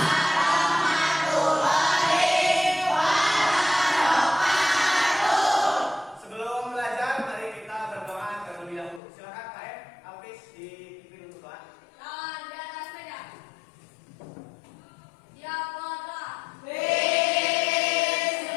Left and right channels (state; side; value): drops out; right; at 9.0 s